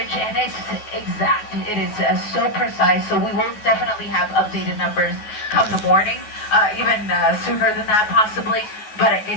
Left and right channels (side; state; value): right; late; 9.4 ms